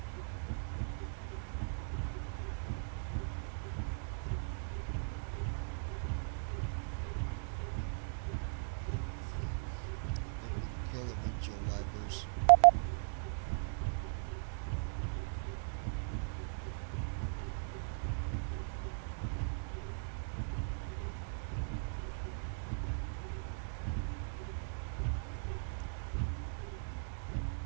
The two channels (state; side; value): silent; left; digital silence